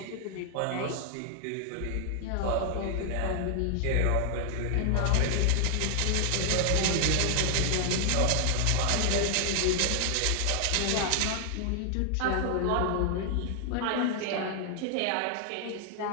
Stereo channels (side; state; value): both; different; correlation 0.00